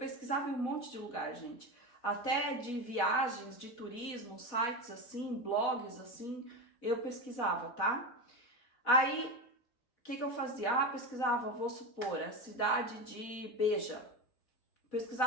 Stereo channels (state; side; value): late; right; 4.1 ms